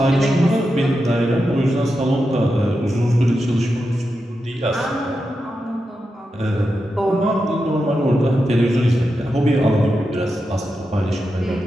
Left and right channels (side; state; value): both; normal; correlation 0.88